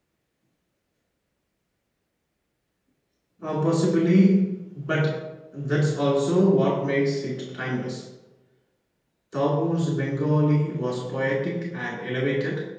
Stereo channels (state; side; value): identical; both; correlation 1.00